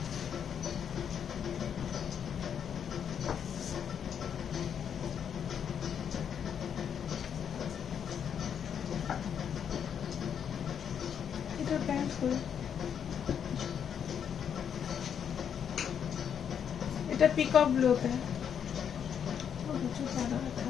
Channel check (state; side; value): quieter; right; 8.0 dB